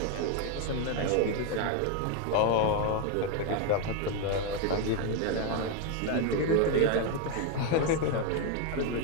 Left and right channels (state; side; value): different; both; correlation 0.01